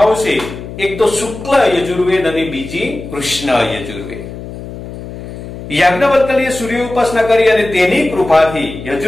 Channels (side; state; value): left; noise; hum, 11 dB below the sound